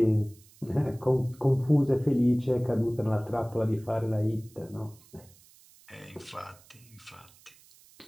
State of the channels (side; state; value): right; noise; hiss, 26 dB below the sound